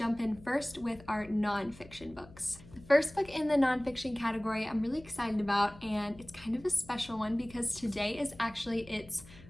in first with our nonfiction books. The first book in the nonfiction category I'm really excited about, and it's kind of a special one because today is actually its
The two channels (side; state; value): left; noise; hum, 21 dB below the sound